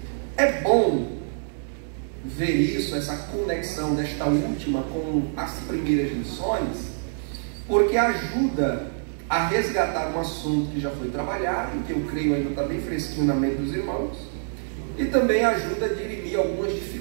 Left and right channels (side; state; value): left; silent; digital silence